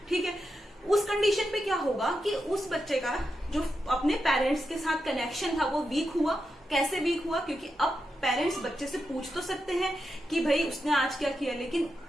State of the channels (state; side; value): normal; both; correlation 0.87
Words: ठीक है, उस कंडीशन पे क्या होगा कि उस बच्चे का जो अपने पेरेंट्स के साथ कनेक्शन था वो वीक हुआ। कैसे वीक हुआ? क्योंकि अब पेरेंट्स बच्चे से पूछ तो सकते हैं कि भाई उसने आज क्या किया, लेकिन